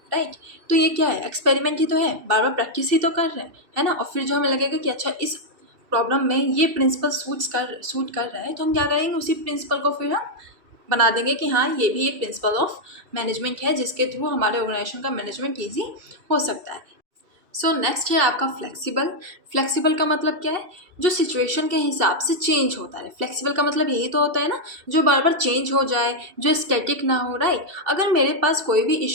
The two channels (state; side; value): late; left; 2.7 ms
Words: राइट। तो ये क्या है? एक्सपेरिमेंट ही तो है, बार बार प्रैक्टिस ही तो कर रहे हैं, है ना। और फिर जो हमें लगेगा कि अच्छा इस प्रॉब्लम में ये प्रिंसिपल सूट कर रहा है, तो हम क्या करेंगे, उसी प्रिंसिपल को फिर हम बना देंगे कि हाँ ये भी एक प्रिंसिपल ऑफ मैनेजमेंट है जिसके थ्रू हमारे ऑर्गेनाइजेशन का मैनेजमेंट ईजी हो सकता है। सो नेक्स्ट है आपका फ्लेक्सिबल। फ्लेक्सिबल का मतलब क्या है? जो सिचुएशन के हिसाब से चेंज होता है। फ्लेक्सिबल का मतलब यही तो होता है ना, जो बार बार चेंज हो जाए, जो स्टैटिक ना हो, राइट। अगर मेरे पास कोई भी